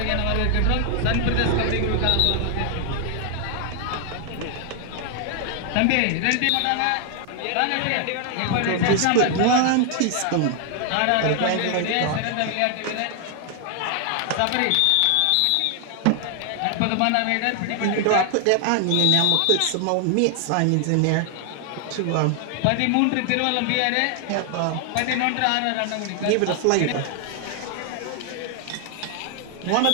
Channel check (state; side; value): different; both; correlation 0.00